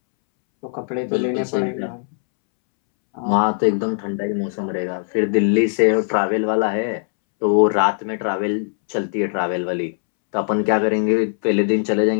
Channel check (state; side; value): silent; right; 66 dB below the other